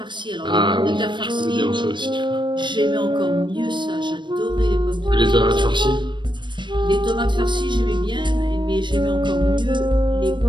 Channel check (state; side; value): late; left; 0.22 ms